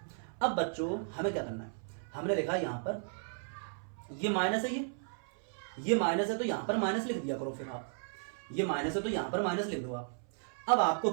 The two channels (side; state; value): left; silent; 55 dB below the other